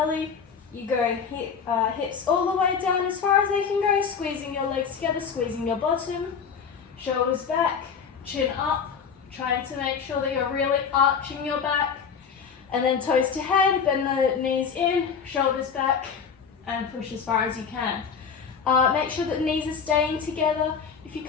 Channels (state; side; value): quieter; right; 6.4 dB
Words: You go hips all the way down as far as they can go, squeezing your legs together, squeezing your bottom, shoulders back, chin up, trying to make sure that you're really arching your back, and then toes to head, bend the knees in, shoulders back, and push as far as you can. Make sure that the knees are staying together. If you